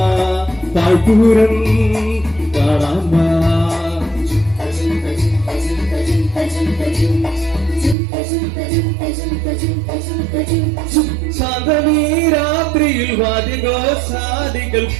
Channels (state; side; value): drops out; left; at 8.0 s